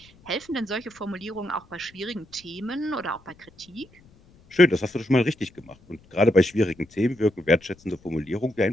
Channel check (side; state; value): left; noise; rumble, 27 dB below the sound